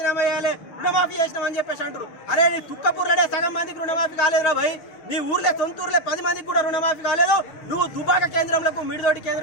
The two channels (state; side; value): late; right; 6.5 ms